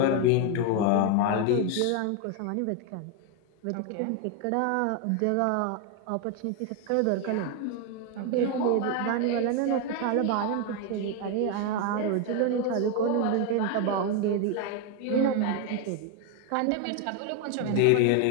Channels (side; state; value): both; different; correlation 0.01